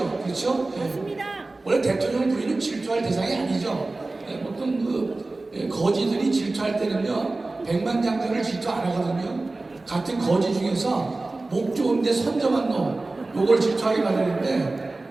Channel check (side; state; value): left; quieter; 3.2 dB